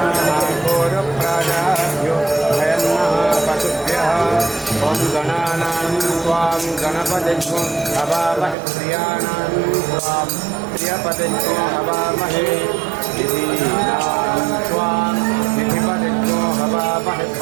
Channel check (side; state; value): left; drops out; at 8.6 s